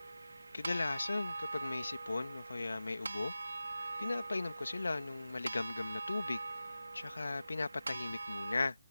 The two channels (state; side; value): inverted; both; correlation -0.96